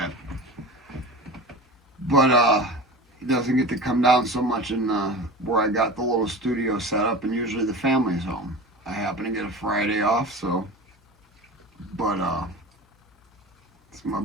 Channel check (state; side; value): normal; both; correlation 0.33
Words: But he doesn't get to come down so much in where I got the little studio set up, and usually the family's home. I happen to get a Friday off, so but it's my